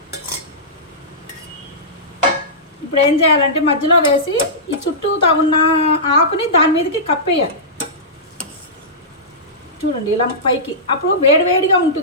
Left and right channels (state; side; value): normal; both; correlation -0.16